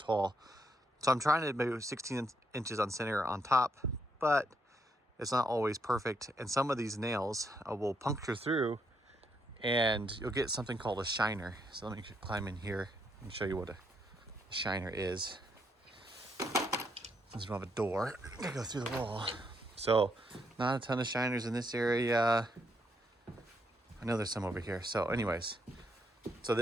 So I'm trying to maybe 16 inches on center on top, but it's not always perfect. And some of these nails will puncture through and you'll get something called a shiner. So let me climb in here and show you what a shiner is. Since we don't have a door, I gotta go through the wall. So not a ton of shiners in this area. I know there's some over here. So anyways, so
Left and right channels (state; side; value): normal; both; correlation 0.76